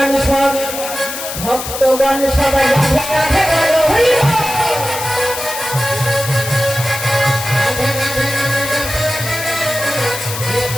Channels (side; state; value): left; noise; hiss, 7 dB below the sound